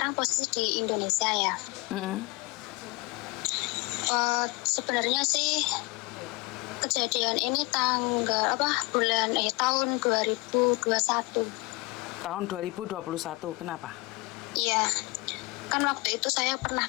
posisi di Indonesia ya. Sebenarnya sih kejadian ini tahun 2021. Tahun 2021, kenapa? Iya, kan waktu itu saya pernah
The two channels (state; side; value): quieter; right; 24.8 dB